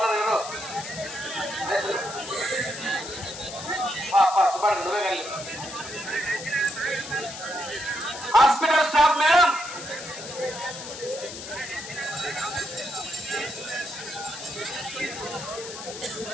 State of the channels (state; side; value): noise; left; hiss, 10 dB below the sound